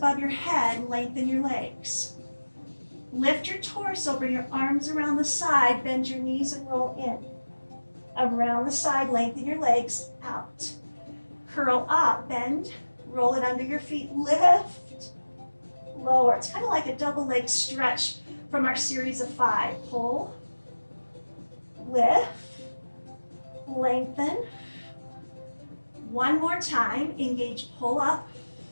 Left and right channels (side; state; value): both; inverted; correlation -1.00